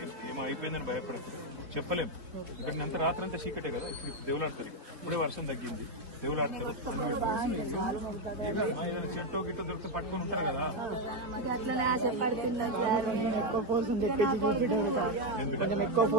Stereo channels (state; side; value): late; left; 4.1 ms